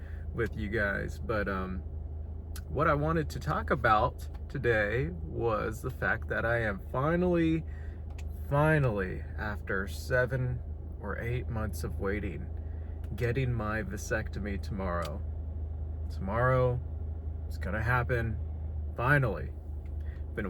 with you guys. But what I wanted to talk about today was the fact that I am finally, after 7 or 8 months of waiting, getting my vasectomy tomorrow. Tomorrow, it's gonna happen, finally. Been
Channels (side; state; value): both; identical; correlation 1.00